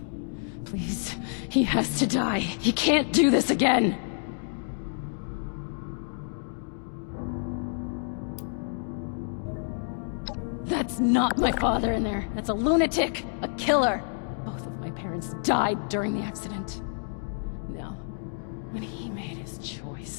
Please, he has to die. He can't do this again. That's not my father in there. That's a lunatic, a killer. Both of my parents died during the accident. No, when he made his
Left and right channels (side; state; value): right; silent; digital silence